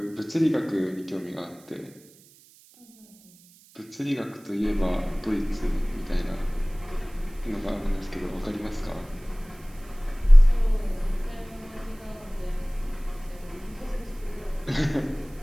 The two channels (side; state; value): right; noise; hiss, 26 dB below the sound